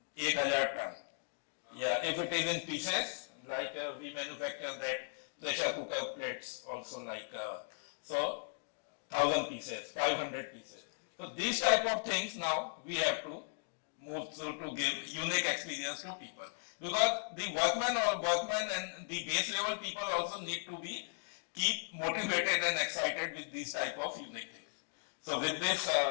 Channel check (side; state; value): right; silent; digital silence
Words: 1000 ton. Yeah, if it is in pieces, like we manufacture that pressure cooker plates also like so 1000 pieces, 500 pieces. So these type of things now we have to move to give unique experience to people. Because the workman and the base level people also need to be keep motivated and excited with these type of unique things. So with this,